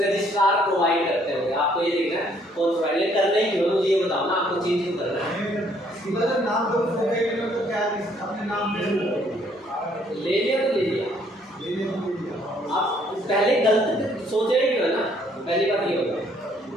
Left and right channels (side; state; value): both; normal; correlation 0.65